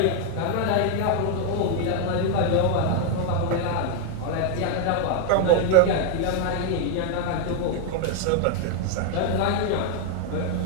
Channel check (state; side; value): different; both; correlation 0.00